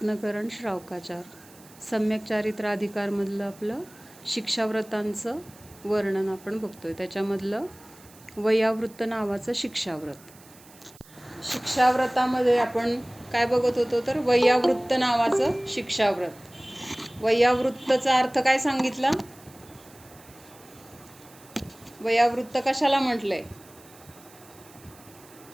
श्रावकाचार सम्यक चारित्राधिकारमधलं आपलं शिक्षाव्रतांचं वर्णन आपण बघतोय. त्याच्यामधलं वयावृत्त नावाचं शिक्षाव्रत. शिक्षाव्रतामध्ये आपण काय बघत होतो तर वयावृत्त नावाचं शिक्षाव्रत. वयावृत्तचा अर्थ काय सांगितला? वयावृत्त कशाला म्हटलंय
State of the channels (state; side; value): noise; right; hiss, 24 dB below the sound